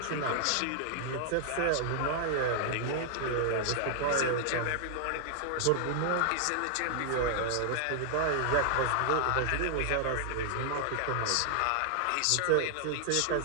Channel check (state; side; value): different; both; correlation -0.01